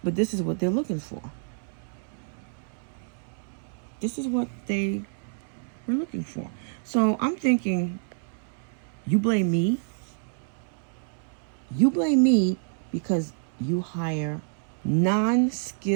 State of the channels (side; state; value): left; silent; 59 dB below the other